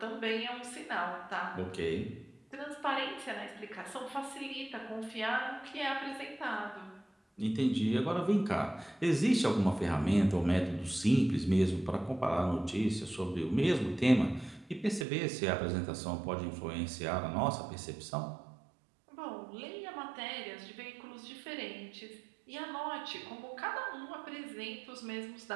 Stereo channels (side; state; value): left; drops out; at 15.1 s